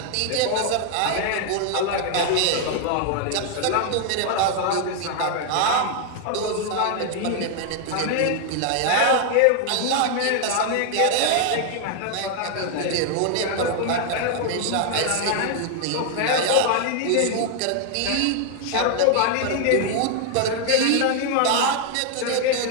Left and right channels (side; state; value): both; different; correlation 0.00